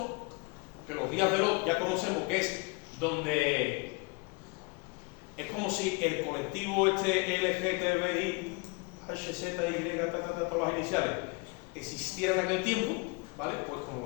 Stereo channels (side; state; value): right; quieter; 29.1 dB